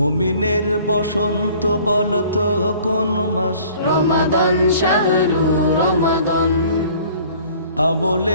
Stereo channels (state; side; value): inverted; both; correlation -0.52